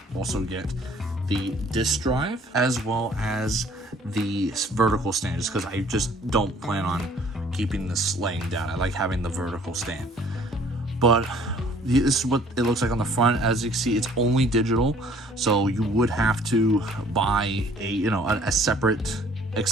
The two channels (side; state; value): both; normal; correlation 0.56